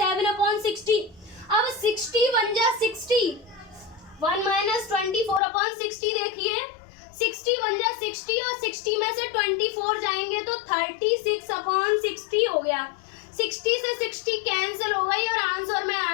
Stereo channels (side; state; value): right; drops out; at 5.4 s